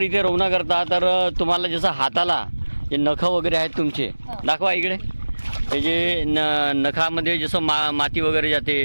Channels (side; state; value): both; inverted; correlation -1.00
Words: इथे रवना करता तर तुम्हाला जसं हाताला जे नखं वगैरे आहेत तुमचे दाखवा इकडे. हे जे नखामध्ये जसं माती वगैरे जाते